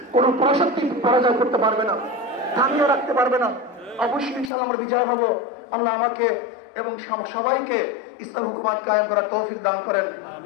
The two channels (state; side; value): drops out; right; at 4.5 s